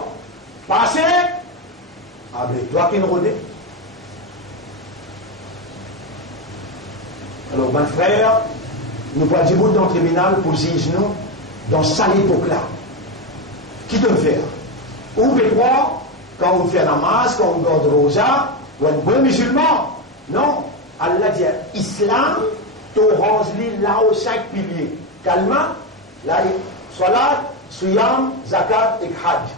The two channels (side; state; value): both; normal; correlation 0.12